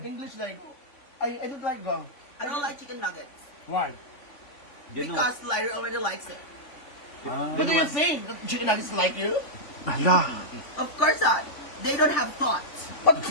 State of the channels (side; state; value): right; late; 3.5 ms